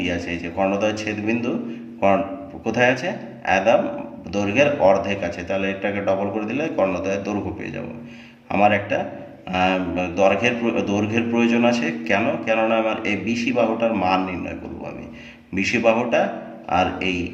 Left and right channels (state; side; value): identical; both; correlation 1.00